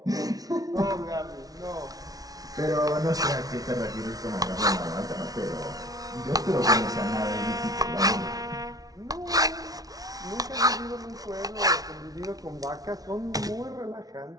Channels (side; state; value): left; late; 0.18 ms